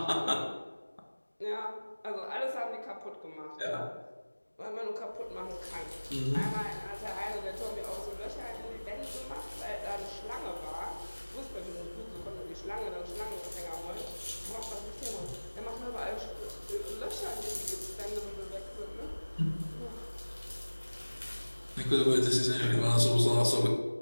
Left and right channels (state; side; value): inverted; both; correlation -1.00